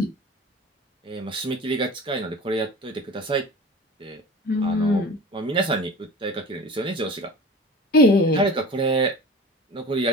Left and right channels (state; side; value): normal; both; correlation 0.37